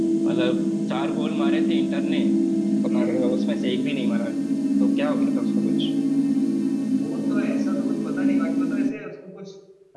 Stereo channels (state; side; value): identical; both; correlation 1.00